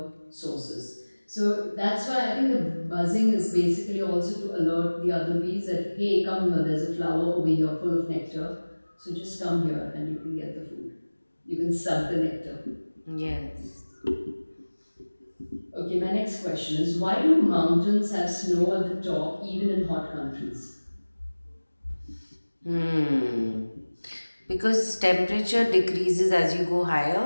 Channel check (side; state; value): both; inverted; correlation -1.00